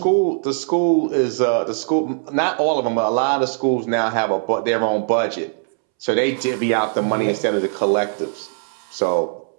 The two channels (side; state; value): left; silent; 66 dB below the other